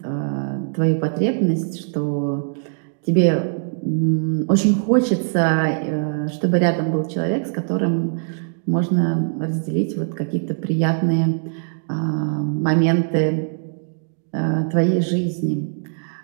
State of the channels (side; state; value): left; silent; digital silence